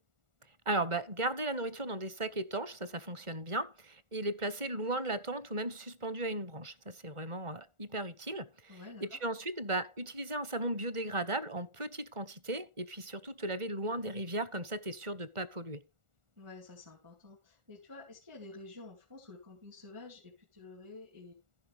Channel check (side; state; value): left; late; 1.4 ms